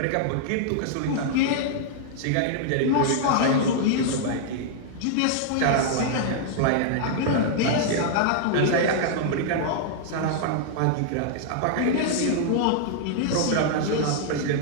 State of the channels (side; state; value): both; different; correlation -0.01